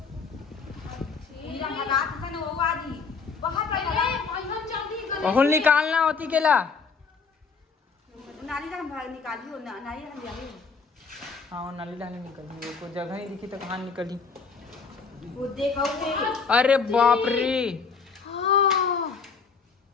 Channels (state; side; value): quieter; right; 5.1 dB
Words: बहुल निकालना होती केला। हाँ नाली डाली निकली, वो कोई जगह नहीं दिखी तो कहाँ निकली। अरे बाप रे,